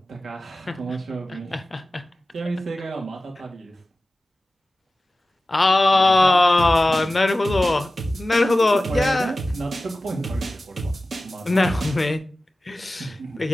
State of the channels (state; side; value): normal; both; correlation 0.96